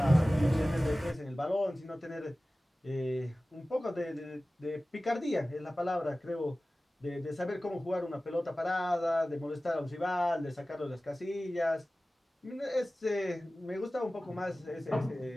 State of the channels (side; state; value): both; normal; correlation 0.97